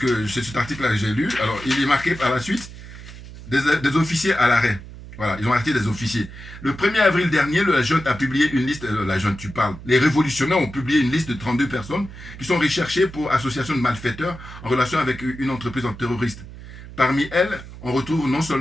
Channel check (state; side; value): noise; right; hum, 15 dB below the sound